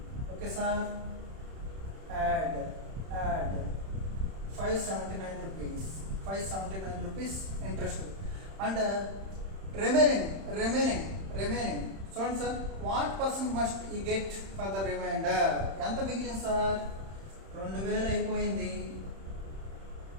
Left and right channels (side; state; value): left; late; 31 ms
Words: Okay sir. Add 579 rupees, 579 rupees interest. And remaining చూడండి సార్, వాట్ పర్సెంట్ మస్ట్ ఈ గెట్ ఫర్ ద రిమైండర్? ఎంత మిగిలింది సార్? 2,000 అయిపోయింది,